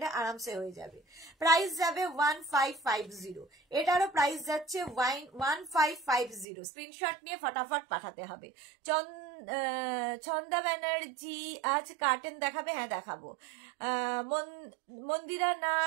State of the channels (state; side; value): drops out; left; at 6.5 s